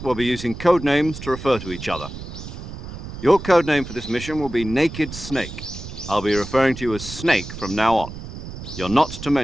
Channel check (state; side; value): noise; right; rumble, 10 dB below the sound